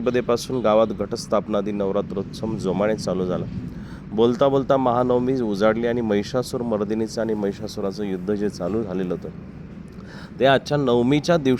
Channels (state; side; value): identical; both; correlation 1.00